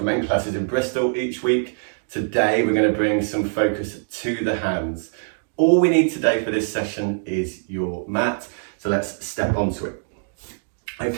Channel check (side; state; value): left; silent; 63 dB below the other